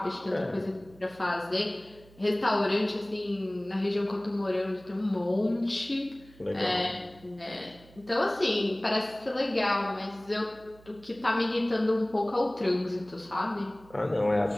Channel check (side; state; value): right; noise; hum, 24 dB below the sound